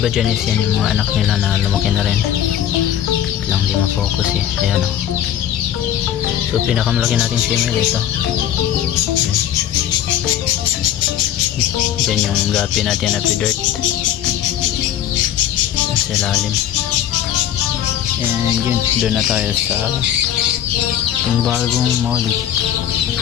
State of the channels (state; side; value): quieter; right; 10.8 dB